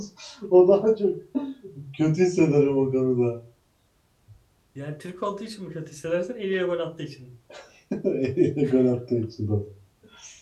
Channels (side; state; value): both; identical; correlation 1.00